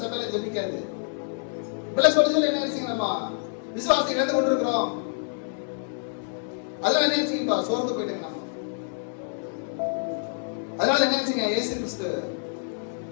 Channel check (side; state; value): right; silent; digital silence